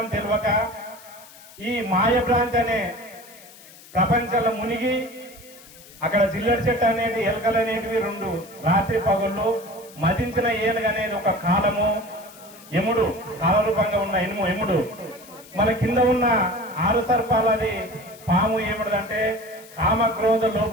తెలియక ఈ మాయభ్రాంతి అనే ప్రపంచంలో మునిగి, అక్కడ జిల్లడి చెట్టు అనేది, ఎలకలు అనేటివి 2 రాత్రి పగుళ్ళు, మదించిన ఏనుగు అనేది ఒక కాలము, యముడు కాలరూపంగా ఉన్న యముడు, మన కింద ఉన్న 6 సర్పాలది పాము ఏమిటంటే కామ క్రోధ లోప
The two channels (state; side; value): noise; left; hiss, 21 dB below the sound